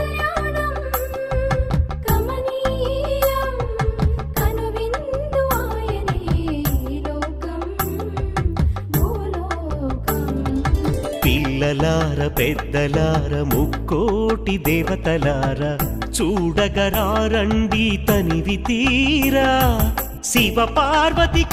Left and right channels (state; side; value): identical; both; correlation 1.00